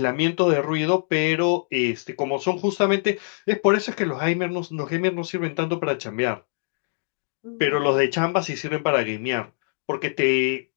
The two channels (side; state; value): right; silent; digital silence